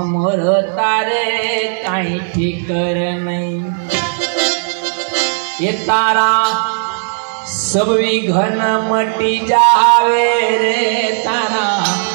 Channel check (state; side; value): silent; left; 64 dB below the other